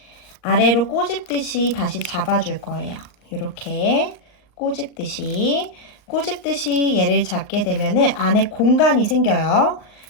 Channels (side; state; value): right; late; 39 ms